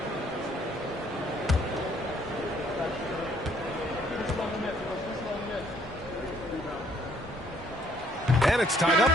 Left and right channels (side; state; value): both; normal; correlation 0.64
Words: And it's tied